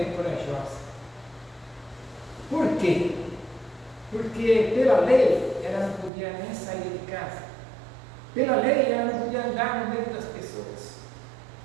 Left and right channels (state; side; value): drops out; left; at 6.1 s